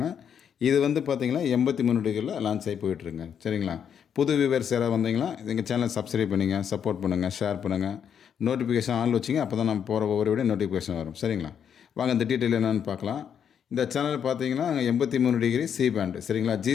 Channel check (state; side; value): quieter; right; 8.1 dB